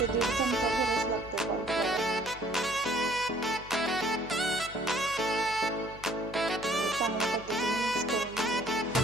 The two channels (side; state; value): left; noise; hum, 18 dB below the sound